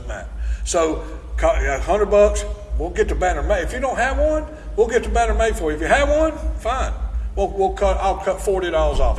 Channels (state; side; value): identical; both; correlation 1.00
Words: matter. So $100, we'll get the banner made. If you don't have one, we'll get the banner made for you. If you have one, fine. I'll cut $40 off.